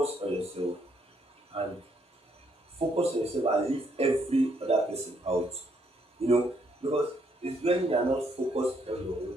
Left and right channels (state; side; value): normal; both; correlation 0.72